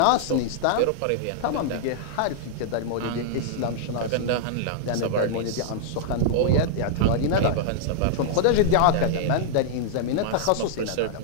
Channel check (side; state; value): both; different; correlation -0.01